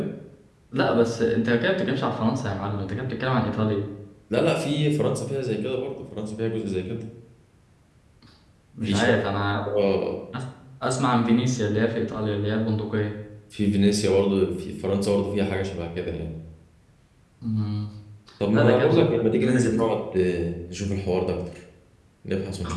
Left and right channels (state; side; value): identical; both; correlation 1.00